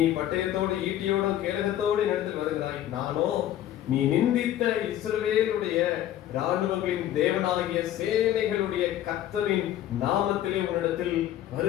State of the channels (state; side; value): quieter; right; 12.2 dB